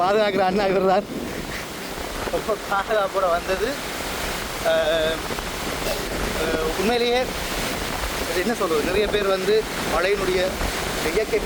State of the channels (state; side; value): identical; both; correlation 1.00